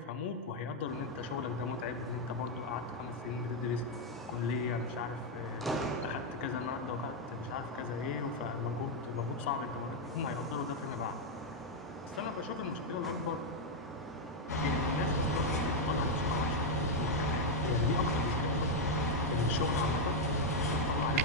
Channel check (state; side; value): normal; both; correlation 0.01